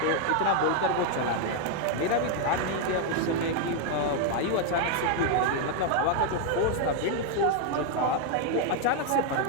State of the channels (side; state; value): both; different; correlation 0.01